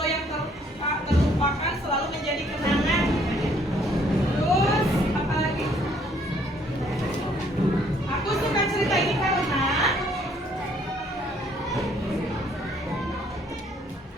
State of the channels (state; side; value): normal; both; correlation 0.64